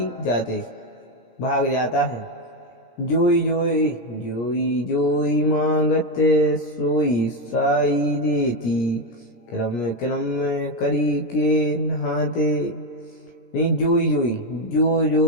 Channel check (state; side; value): late; right; 17 ms